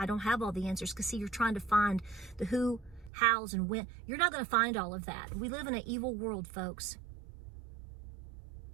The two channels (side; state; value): left; drops out; at 3.1 s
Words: don't have all the answers. Because see, you're trying to find the who, hows, and when. You're not going to find all of that. We live in an evil world, folks.